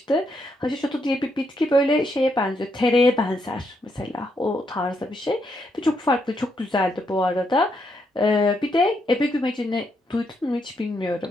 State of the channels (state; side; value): normal; both; correlation 0.78